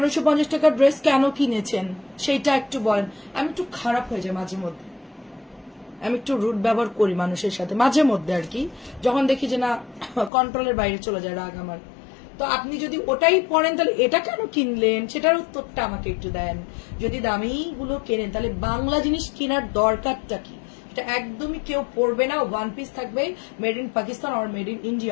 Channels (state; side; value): drops out; right; at 10.3 s